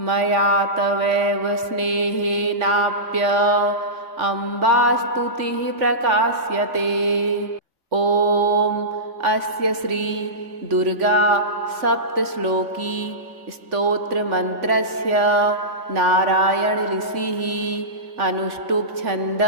मया तवैव स्नेहेनाप्य अम्बास्तुतिः प्रकाश्यते। ॐ अस्य श्री दुर्गा सप्तश्लोकी स्तोत्रमन्त्रस्य नारायण ऋषिः अनुष्टुप्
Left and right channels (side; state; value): left; late; 3.5 ms